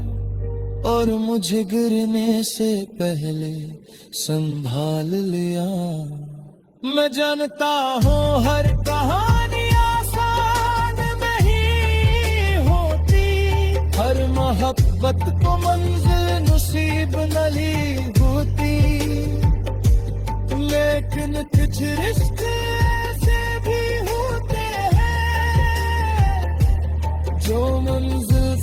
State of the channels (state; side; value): identical; both; correlation 1.00